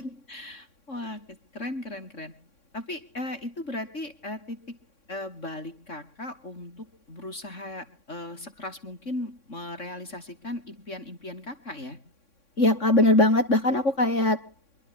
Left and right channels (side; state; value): right; late; 3.6 ms